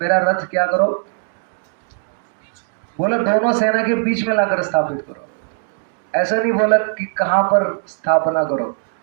मेरा रथ क्या करो, बोला दोनों सेना के बीच में लाकर स्थापित करो, ऐसा नहीं बोला कि कहाँ पर स्थापना करो।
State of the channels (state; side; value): silent; left; digital silence